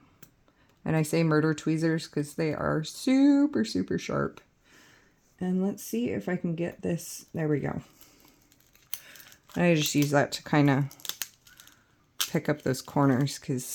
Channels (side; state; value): both; identical; correlation 1.00